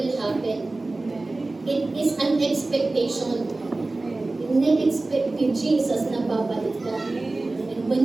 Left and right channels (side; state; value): left; quieter; 3.1 dB